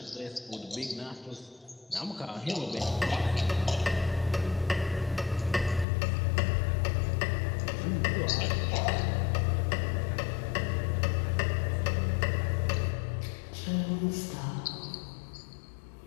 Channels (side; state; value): right; drops out; at 5.9 s